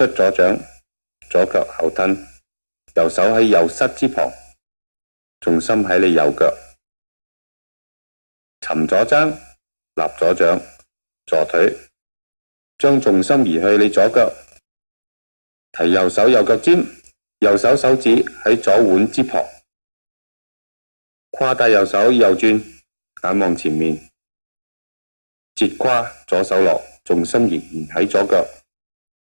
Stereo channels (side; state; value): both; inverted; correlation -1.00